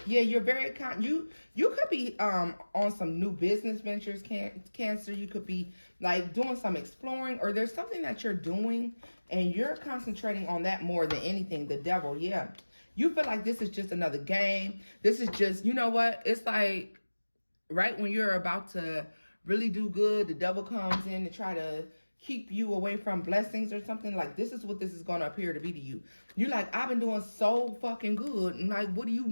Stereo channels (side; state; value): both; inverted; correlation -1.00